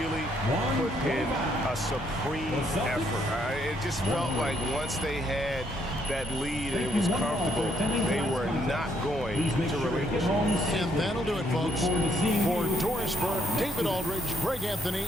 put in a supreme effort. It just felt like once they had that lead and it was comfortable, they were not going to relinquish. And that'll do it, folks. For Doris Burke, David Aldridge, Greg Anthony,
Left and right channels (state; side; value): normal; both; correlation 0.72